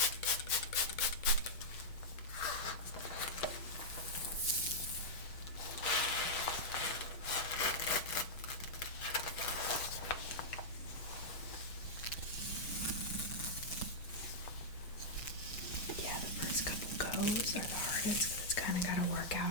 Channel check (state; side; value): late; right; 6.2 ms